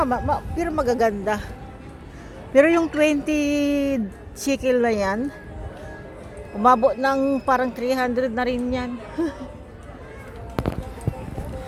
magaganda. Pero yung 20 shekel na yan, umabot ng parang 300 na rin yan.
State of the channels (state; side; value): identical; both; correlation 1.00